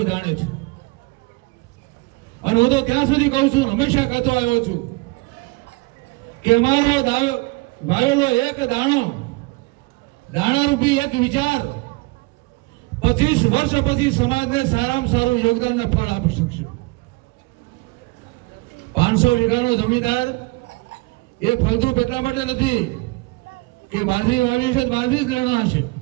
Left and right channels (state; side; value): quieter; left; 24.4 dB